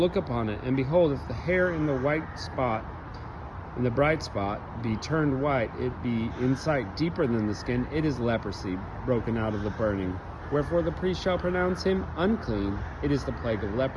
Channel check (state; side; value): identical; both; correlation 1.00